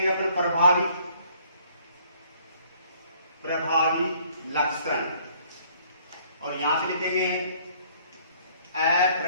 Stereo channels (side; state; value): both; inverted; correlation -0.60